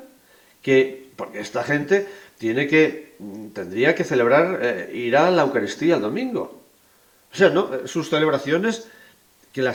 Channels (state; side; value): identical; both; correlation 1.00